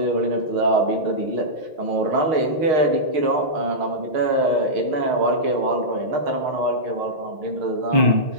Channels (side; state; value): left; late; 6.4 ms